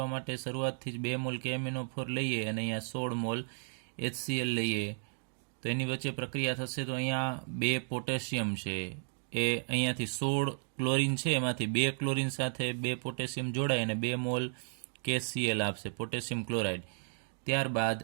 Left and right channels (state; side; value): silent; left; digital silence